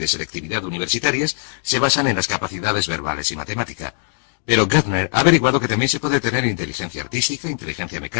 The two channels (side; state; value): right; silent; digital silence